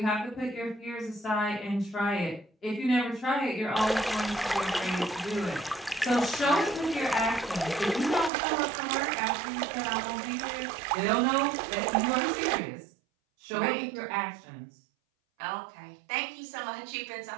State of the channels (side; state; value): left; drops out; at 8.3 s